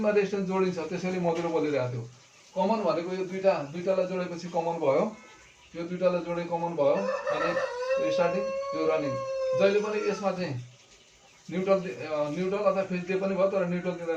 रेजिस्टेन्स जोडिन्छ, त्यसैले मधुरो बोलिरहेको थियो। कमन भनेको यो 2टालाई जोडेपछि कमन भयो, यो 2टालाई जोडे कमन भयो। अनि स्टार्टिङ यो रनिङ, जहिले पनि यसमा चाहिँ न्युट्रल अथवा फेज दिए पनि भयो, तर न्युट्रल दिँदा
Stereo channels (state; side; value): identical; both; correlation 1.00